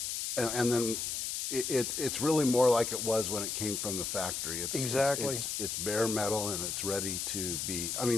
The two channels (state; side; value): noise; left; hiss, 2 dB below the sound